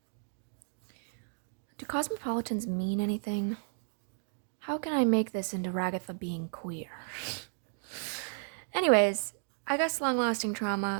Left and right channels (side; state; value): left; silent; digital silence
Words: Do cosmopolitans mean anything? How can I make this into Ragatha being queer? Anyways, I guess long-lasting